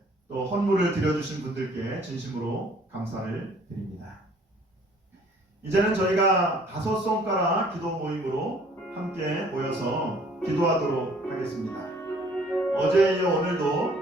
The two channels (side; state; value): both; normal; correlation 0.57